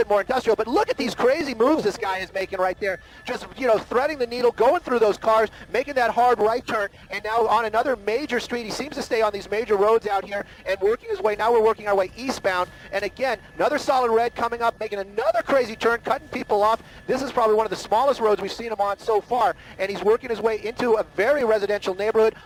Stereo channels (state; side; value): identical; both; correlation 1.00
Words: more industrial. But look at these crazy moves this guy is making right there. Just, threading the needle, going through those cars, making that hard right turn, and now on another major street. He seems to stay on these major roads out here and working his way. Now we're working our way eastbound. And again, another solid red coming up, making another crazy turn, cutting people off. This is probably one of the smallest roads we've seen him on so far. And he's working his way into a very residential neighborhood.